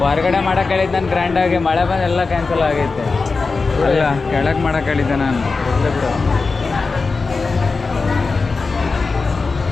ಹೊರಗಡೆ ಮಾಡಕ್ಕೆ ಹೇಳಿದ್ದೆ ನಾನು ಗ್ರ್ಯಾಂಡಾಗಿ, ಮಳೆ ಬಂದು ಎಲ್ಲ ಕ್ಯಾನ್ಸಲ್ ಆಗೈತೆ. ಅಲ್ಲ ಕೆಳಗೆ ಮಾಡಕ್ಕೆ ಹೇಳಿದ್ದೆ ನಾನು. ಇಲ್ಲ ಬಿಡು.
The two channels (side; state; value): right; quieter; 4.2 dB